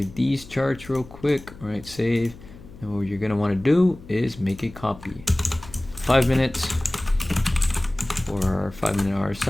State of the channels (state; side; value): noise; left; hum, 19 dB below the sound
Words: these charts real quick. All right, save. And what you're gonna want to do is make a copy. 5 minutes for our 5-minute